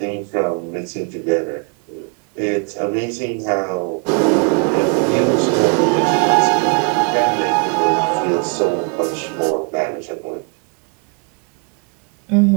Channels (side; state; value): left; quieter; 37.1 dB